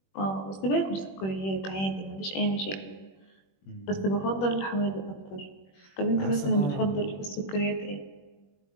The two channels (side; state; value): right; late; 21 ms